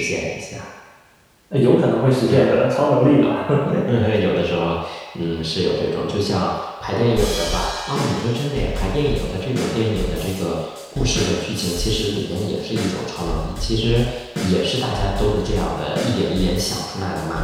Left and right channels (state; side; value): identical; both; correlation 1.00